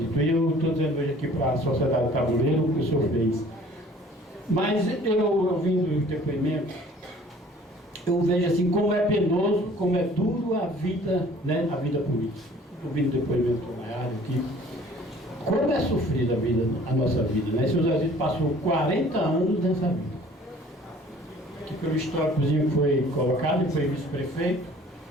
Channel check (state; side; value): normal; both; correlation 0.52